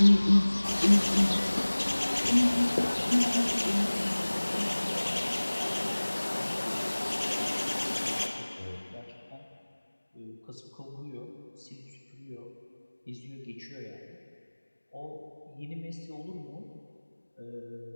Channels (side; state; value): both; inverted; correlation -1.00